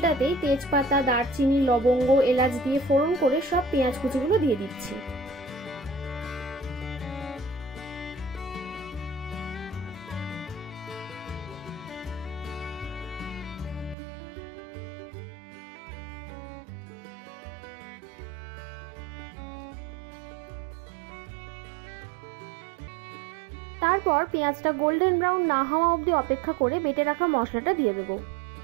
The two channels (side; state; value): left; drops out; at 14.0 s